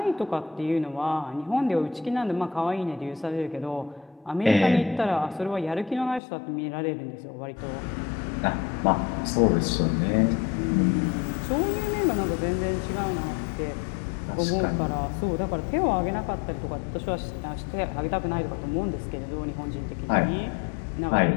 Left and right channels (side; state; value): right; drops out; at 6.2 s